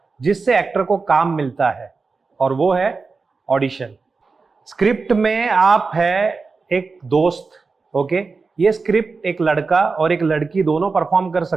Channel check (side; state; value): left; quieter; 4.4 dB